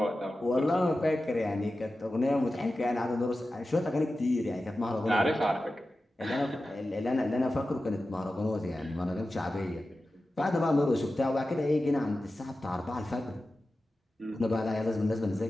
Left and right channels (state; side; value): normal; both; correlation 0.94